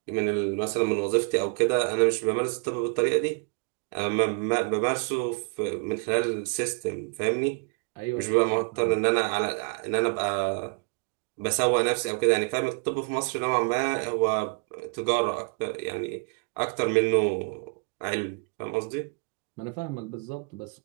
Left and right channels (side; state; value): left; quieter; 37.2 dB